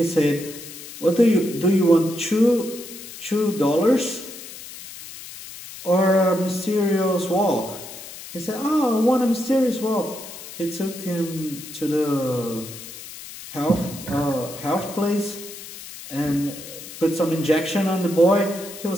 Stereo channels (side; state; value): left; noise; hiss, 13 dB below the sound